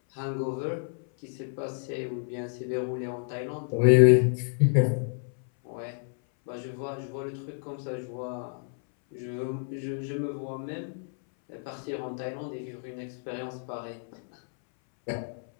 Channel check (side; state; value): right; silent; 58 dB below the other